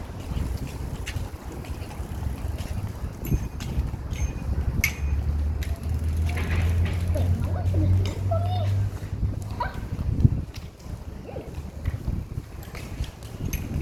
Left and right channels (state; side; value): identical; both; correlation 1.00